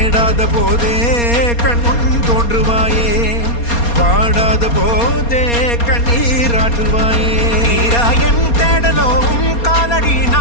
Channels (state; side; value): late; right; 4.3 ms